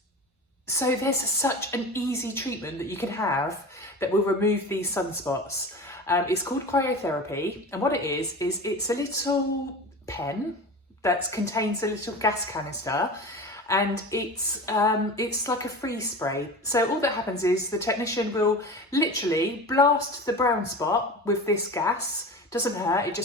So there's such an easy treatment that you can have that will remove these sunspots. It's called cryotherapy, and what it is it's a little pen that contains a little gas canister, and it's like a freeze spray. So all that happens is the technician will literally blast the brown spot with this gas. Doesn't hurt, it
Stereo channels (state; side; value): normal; both; correlation 0.32